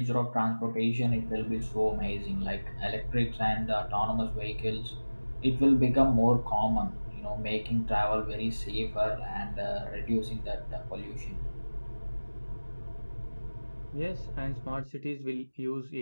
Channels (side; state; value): both; inverted; correlation -1.00